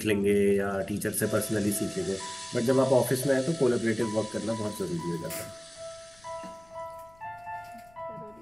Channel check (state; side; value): noise; left; rumble, 28 dB below the sound